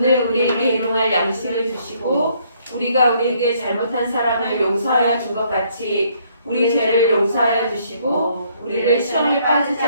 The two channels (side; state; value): both; inverted; correlation -0.67